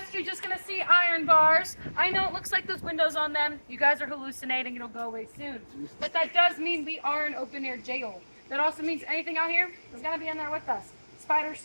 you're just gonna see iron bars. I know it looks like there's windows on them. You guys are hallucinating. It'll go away soon. But that does mean we are an open-air jail. That also means anything out here is gonna be in there with us. Spiders,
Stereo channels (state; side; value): inverted; both; correlation -1.00